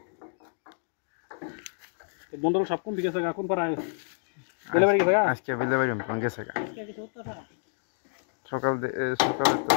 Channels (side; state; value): right; silent; digital silence